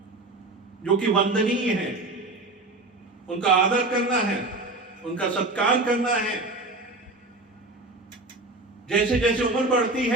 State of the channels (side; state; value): left; quieter; 3.0 dB